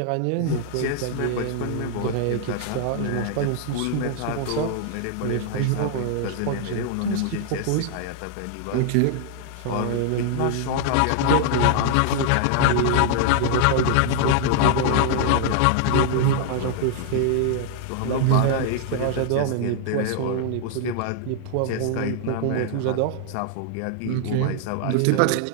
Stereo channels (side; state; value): both; different; correlation 0.00